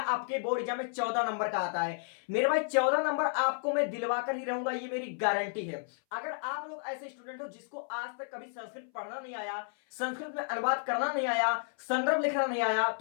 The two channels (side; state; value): right; silent; 56 dB below the other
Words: आपके बोर्ड एग्जाम में 14 नंबर का आता है। मेरे भाई 14 नंबर आपको मैं दिलवा कर ही रहूंगा, ये मेरी गारंटी है। अगर आप लोग ऐसे स्टूडेंट हो जिसको आज तक कभी संस्कृत पढ़ना नहीं आया, संस्कृत में अनुवाद करना नहीं आया, संदर्भ लिखना नहीं आया,